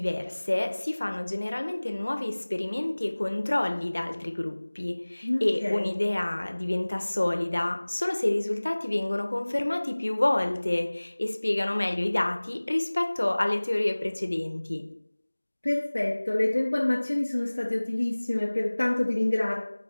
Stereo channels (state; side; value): inverted; both; correlation -1.00